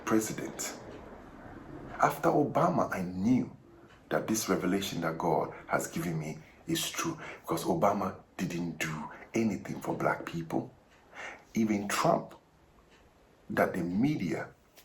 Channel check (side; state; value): both; identical; correlation 1.00